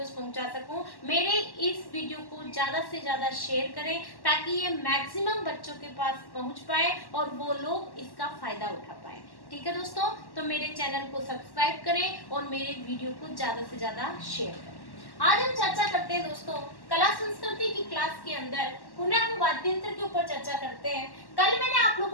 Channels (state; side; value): late; right; 1.1 ms